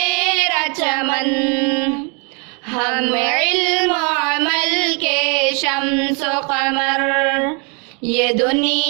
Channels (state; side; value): quieter; left; 34.2 dB